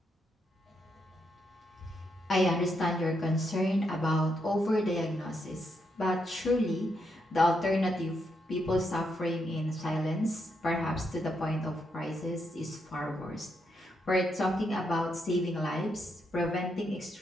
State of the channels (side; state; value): both; normal; correlation 0.80